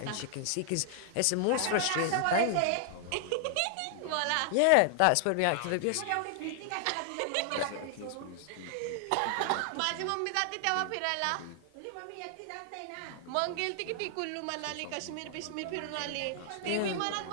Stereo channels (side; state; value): both; different; correlation 0.00